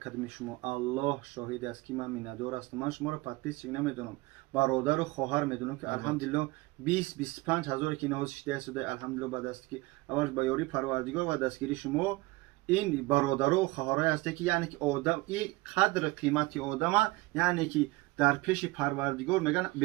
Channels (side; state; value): left; quieter; 21.5 dB